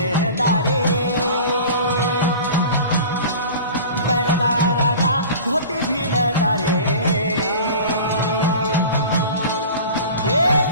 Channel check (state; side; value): inverted; both; correlation -0.38